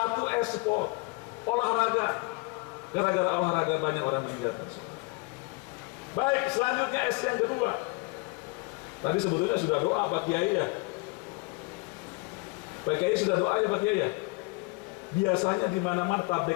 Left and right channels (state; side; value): quieter; right; 28.7 dB